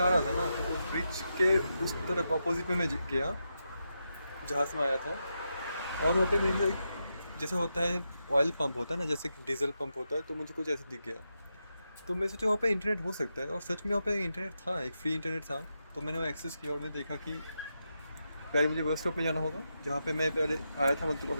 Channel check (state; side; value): inverted; both; correlation -0.86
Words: रहा था ना, तो ब्रिज के उस तरफ अपोजिट में मैं गया जहाँ से मैं आया था। और वहाँ पे मुझे जैसे होता है ऑयल पंप होता है ना, जैसे डीजल पंप होता है, तो मुझे कुछ ऐसे दिख गया। तो मैं सोचा वहाँ पे इंटरनेट हो सकता है, और सच में वहाँ पे इंटरनेट था, एक फ्री इंटरनेट था। तो मैंने वो एक्सेस किया और मैं देखा कि पहले मुझे बस स्टॉप में जाना होगा जहाँ पे मैं पहले आया था, मतलब